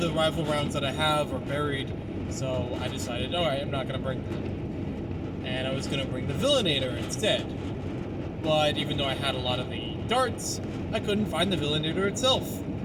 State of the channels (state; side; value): identical; both; correlation 1.00